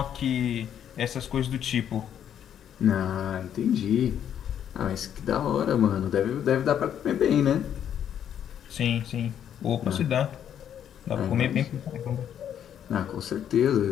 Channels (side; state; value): right; quieter; 9.5 dB